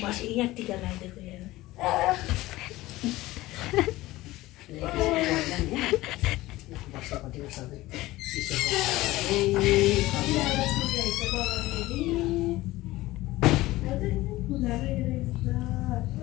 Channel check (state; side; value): quieter; right; 18.0 dB